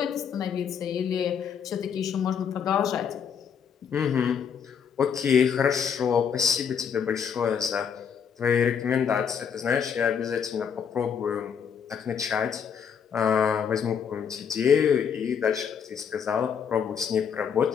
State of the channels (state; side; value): quieter; right; 7.3 dB